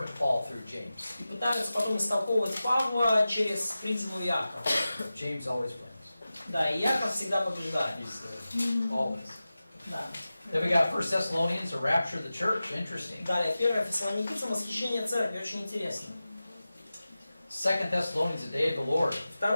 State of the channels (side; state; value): both; inverted; correlation -0.95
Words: Paul through James. И пытаются потом истолковывать Павла через призму Иакова. James always wins. Да, и Иаков всегда побеждает. He's always. Да. Then we got 1 Thessalonians, the rapture of the church. Interesting. Далее, 1 Фессалоникийцам, восхищение церкви, очень интересно. 2 Thessalonians, the day of the Lord. 2